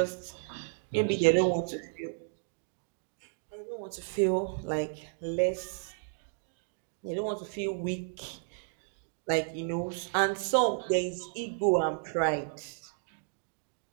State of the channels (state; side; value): silent; left; digital silence